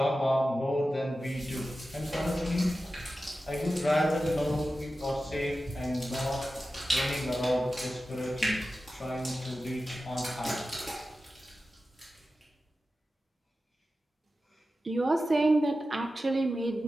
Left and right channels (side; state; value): both; normal; correlation 0.93